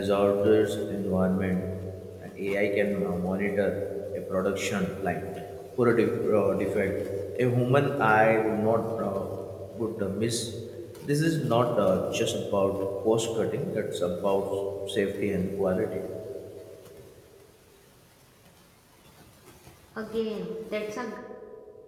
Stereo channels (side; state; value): both; identical; correlation 1.00